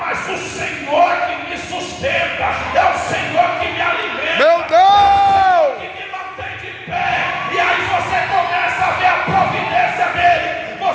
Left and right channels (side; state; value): both; identical; correlation 1.00